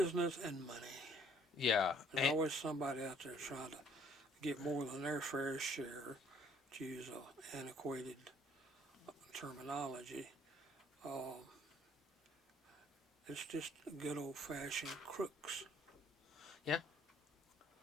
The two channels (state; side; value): normal; both; correlation 0.60